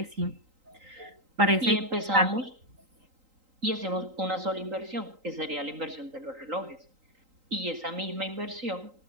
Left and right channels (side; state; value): left; late; 3.8 ms